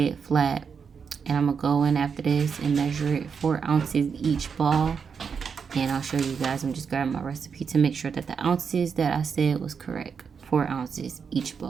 it flat. And I'm going to go in after this and measure it 4 ounces each ball. And I'll show you guys. I'm just grabbing my recipe to make sure that the ounces that I said was correct. 4 ounces each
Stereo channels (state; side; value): quieter; left; 6.2 dB